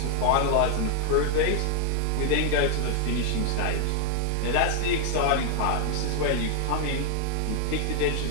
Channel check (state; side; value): different; both; correlation 0.00